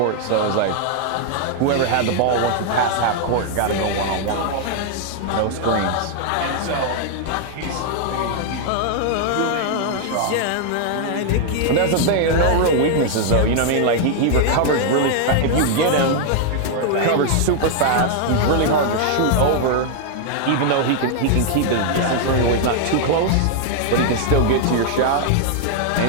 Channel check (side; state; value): both; different; correlation 0.00